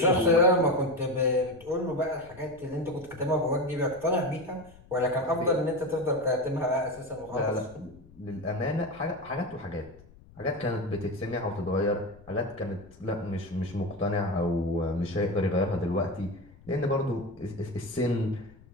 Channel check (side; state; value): left; noise; rumble, 23 dB below the sound